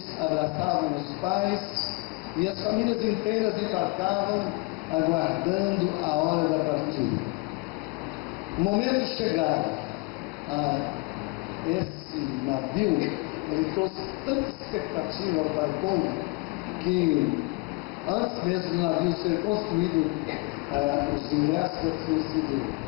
abraçavam os pais, e as famílias inteiras embarcavam, aguardando a hora da partida. O momento chegado, esse navio, ele trouxe tanta expectativa para o povo, que antes mesmo do navio ser construído, os ingressos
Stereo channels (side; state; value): right; quieter; 26.8 dB